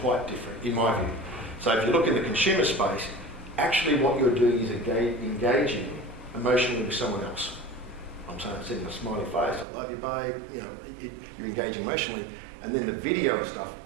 quite different, in my view. So if you look in the consumer space, actually what you're doing is engaging emotionally with someone else. I'm saying sending a smiley face, I love you, babe. You're engaging emotionally. And then the video stuff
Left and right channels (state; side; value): drops out; left; at 9.7 s